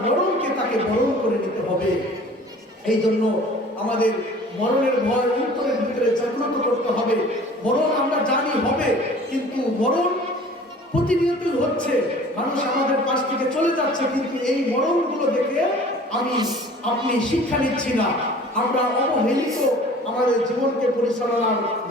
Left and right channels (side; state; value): both; normal; correlation 0.47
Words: মরণকে তাকে বরণ করে নিতে হবে। এই জন্য আমাদের মরণের ভয় অন্তরের ভিতরে জাগ্রত করতে হবে। মরণ আমরা জানি হবে, কিন্তু মরণ প্রতিনিয়তই হচ্ছে, মানুষ আমাদের পাশ থেকে চলে যাচ্ছে, কিন্তু এই মরণগুলো দেখে আমি আপনি শিক্ষা নিচ্ছি না, আমরা অবহেলিত আমাদের জীবনকে পরিচালনার